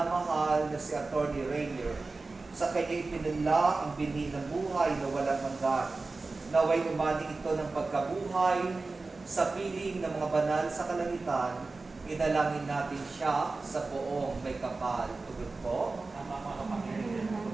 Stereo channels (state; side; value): quieter; left; 3.7 dB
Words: na si Atty. Rainier, sa kanya ipinunla ang binhi ng buhay na walang hanggan. Naway umani ito ng pagkabuhay sa piling ng mga banal sa kalangitan, inalangin natin siya sa poong may kapal. Tugon po.